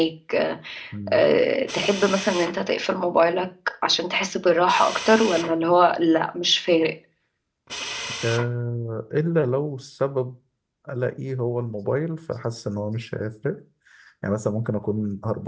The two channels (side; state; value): both; identical; correlation 1.00